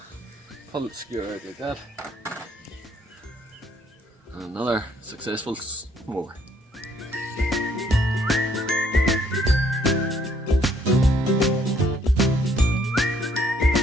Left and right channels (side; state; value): both; normal; correlation 0.66